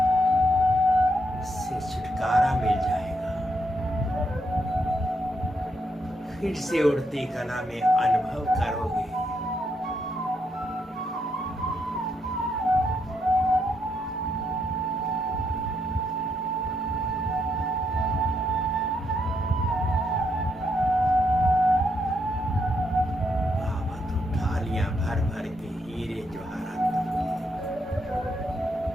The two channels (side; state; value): both; normal; correlation 0.78